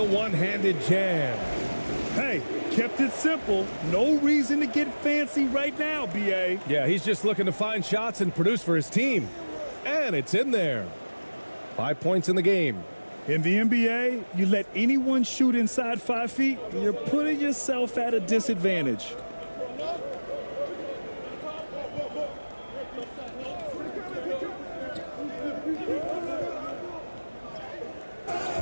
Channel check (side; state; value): both; inverted; correlation -1.00